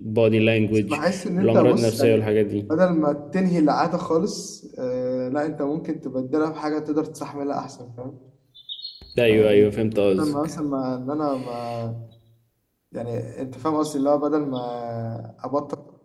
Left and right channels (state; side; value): identical; both; correlation 1.00